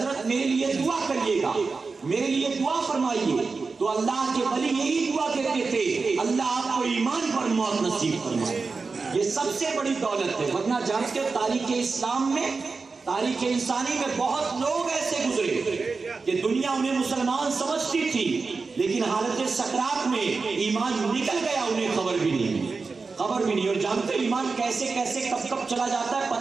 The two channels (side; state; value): left; quieter; 4.4 dB